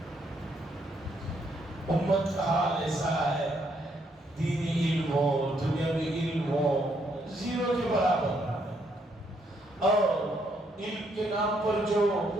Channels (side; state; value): both; normal; correlation 0.73